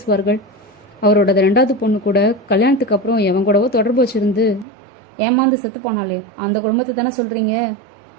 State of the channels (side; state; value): left; drops out; at 4.7 s